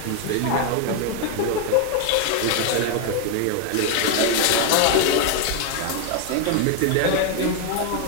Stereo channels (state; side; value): different; both; correlation 0.01